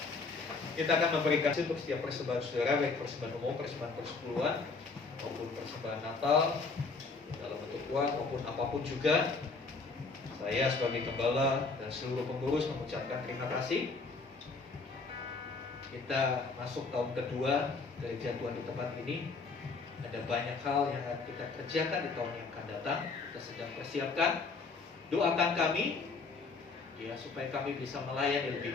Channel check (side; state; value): right; quieter; 4.2 dB